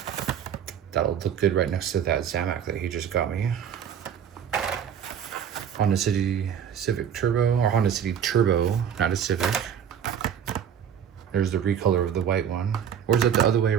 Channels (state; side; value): quieter; left; 8.5 dB